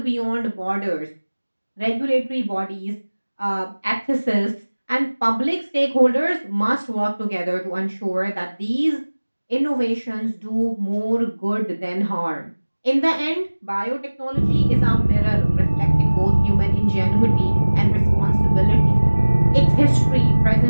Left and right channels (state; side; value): inverted; both; correlation -1.00